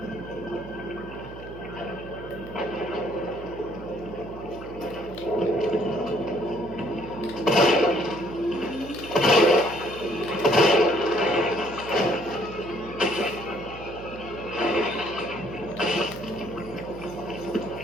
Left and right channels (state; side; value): noise; right; hum, 14 dB below the sound